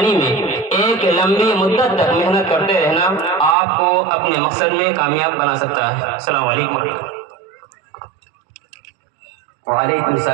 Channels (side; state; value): left; drops out; at 3.6 s